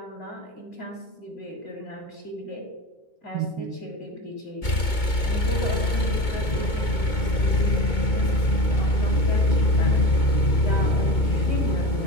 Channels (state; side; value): late; right; 2.2 ms